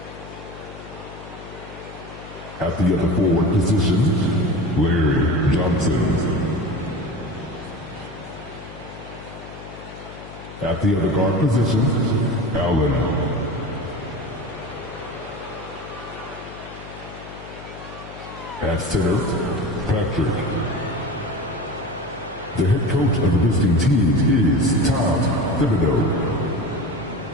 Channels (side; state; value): left; noise; hum, 15 dB below the sound